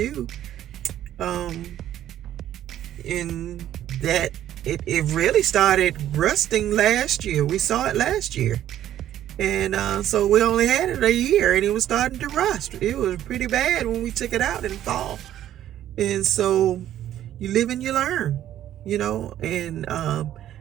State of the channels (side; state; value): left; quieter; 11.9 dB